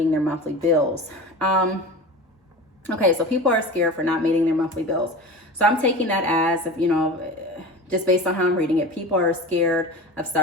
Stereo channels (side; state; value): both; normal; correlation 0.32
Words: their monthly bills." Okay, so people are scared for not meeting their monthly bills. So I'm taking that as, just based on how I'm reading it, people are scared of